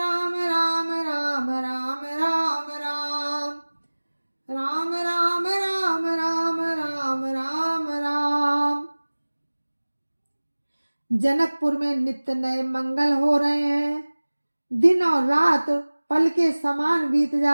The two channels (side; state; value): both; inverted; correlation -1.00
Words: राम राम राम राम राम, राम राम राम राम राम राम राम। जनकपुर में नित्य नए मंगल हो रहे हैं। दिन और रात पल के समान बीत